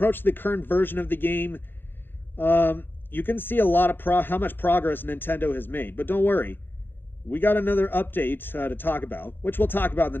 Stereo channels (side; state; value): right; late; 0.099 ms